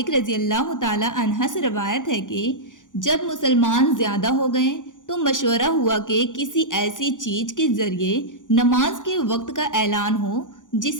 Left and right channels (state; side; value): late; right; 0.87 ms